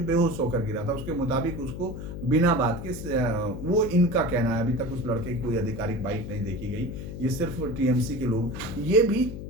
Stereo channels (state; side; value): noise; left; hum, 8 dB below the sound